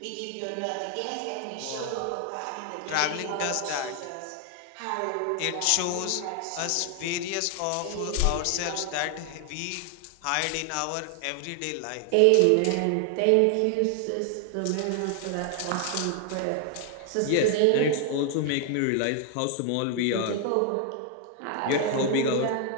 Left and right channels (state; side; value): different; both; correlation 0.00